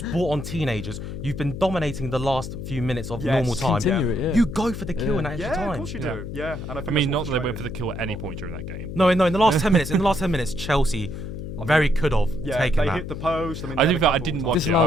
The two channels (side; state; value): left; noise; hum, 7 dB below the sound